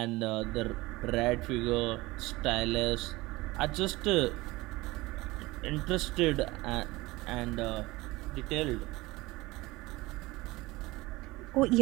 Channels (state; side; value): quieter; left; 20.7 dB